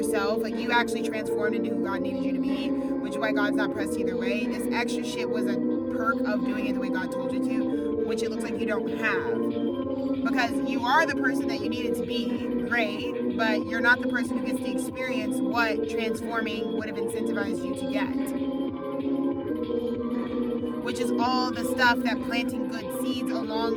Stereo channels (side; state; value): both; identical; correlation 1.00